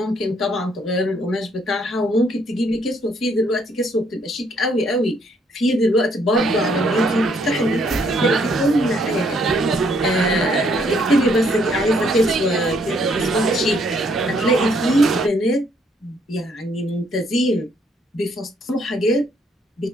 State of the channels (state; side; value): normal; both; correlation 0.69